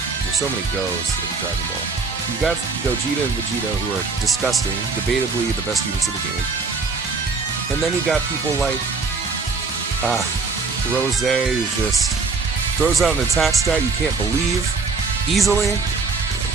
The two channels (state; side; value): quieter; left; 4.4 dB